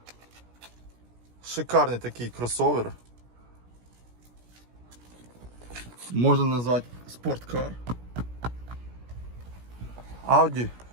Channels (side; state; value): left; late; 17 ms